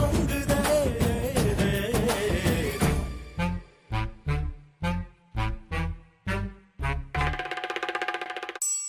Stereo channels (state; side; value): identical; both; correlation 1.00